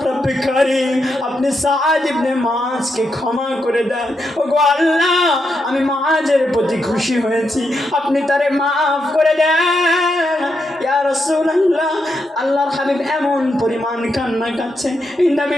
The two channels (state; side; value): normal; both; correlation 0.83